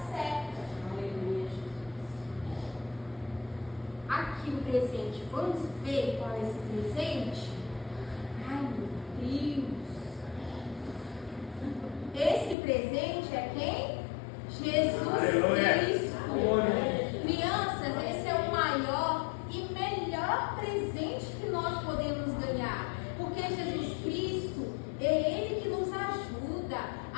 certa. Aqui o presente. Vamos ver qual é esse presente? Ai, meu Deus. Esse presente é quem? Jesus Cristo. Crianças, esse é o maior e melhor presente que nós podemos ganhar. Porque Jesus Cristo é Ele que nos ajuda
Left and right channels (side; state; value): right; drops out; at 12.6 s